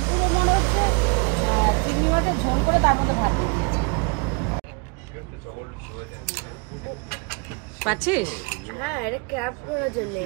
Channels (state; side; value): quieter; left; 31.3 dB